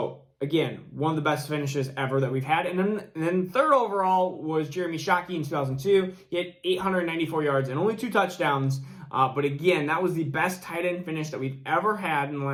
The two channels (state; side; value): identical; both; correlation 1.00